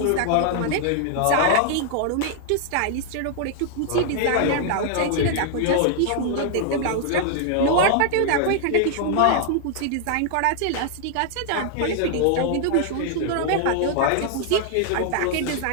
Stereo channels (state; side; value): different; both; correlation -0.01